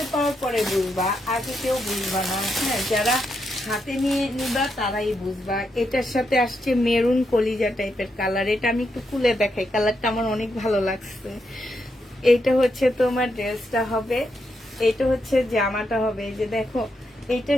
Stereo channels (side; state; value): both; normal; correlation 0.82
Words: পাওয়ার পরে বুঝবা, আগে কেউ বুঝবা না। হ্যাঁ, যারা হাতে নিয়ে নিবা তারাই বুঝবা। এটার সাথে আসছে মেরুন কলিজা টাইপের কালার। এটা আমি একটু খুলে দেখাই, কালারটা আমার অনেক ভালো লাগছে। এইটা হচ্ছে তোমার ড্রেসটা হবে, এটা হচ্ছে জামাটা হবে। এই যে দেখো